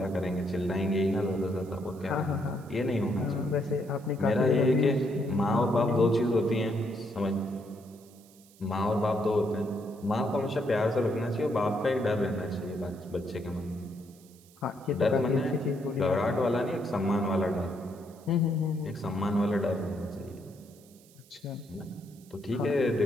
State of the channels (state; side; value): noise; right; hiss, 26 dB below the sound